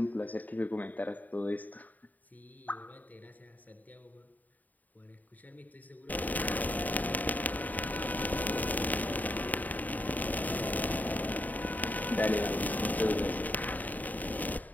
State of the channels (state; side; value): late; right; 0.081 ms